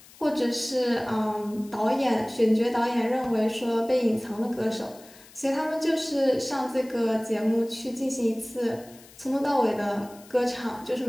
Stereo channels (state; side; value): noise; left; hiss, 23 dB below the sound